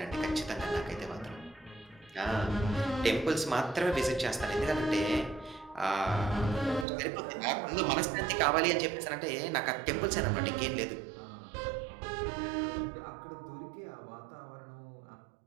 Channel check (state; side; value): drops out; left; at 6.9 s